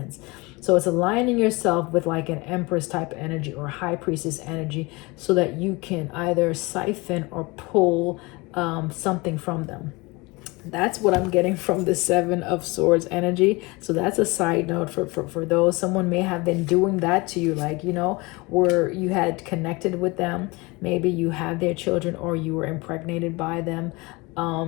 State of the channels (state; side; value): quieter; right; 24.9 dB